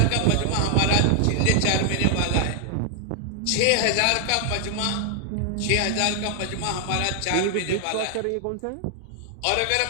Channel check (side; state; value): both; different; correlation 0.00